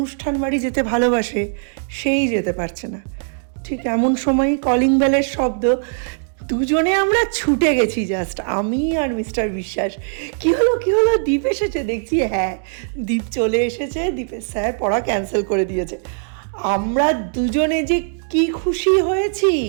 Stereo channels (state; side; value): silent; left; digital silence